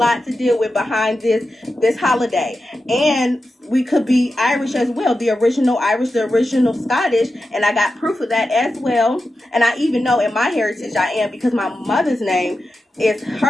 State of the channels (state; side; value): normal; both; correlation 0.91